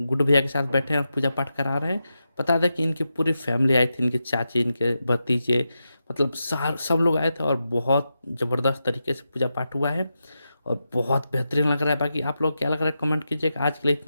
भैया के साथ बैठे हैं और पूजा पाठ करा रहे हैं। बता दें कि इनकी पूरी फैमिली आई थी, इनके चाची, इनके भतीजे, मतलब सार सब लोग आए थे और बहुत ज़बरदस्त तरीके से पूजा पाठ हुआ है और बहुत बेहतरीन लग रहा है। बाकी आप लोग क्या लग रहा है कमेंट कीजिएगा। आज के लिए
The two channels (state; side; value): inverted; both; correlation -0.88